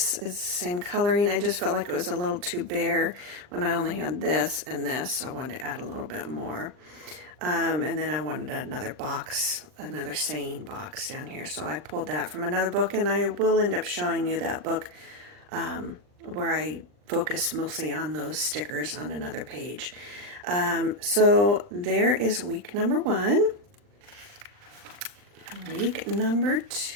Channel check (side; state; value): left; late; 39 ms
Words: is the same coloring. I just felt like it was a little too bare when I only had this and this, so I wanted to add a little bit more. And then I wanted another box, another saying box down here. So I pulled that from another book, and I will end up showing you that book where I focus mostly on those stickers on another page. So there is week number 1. Week number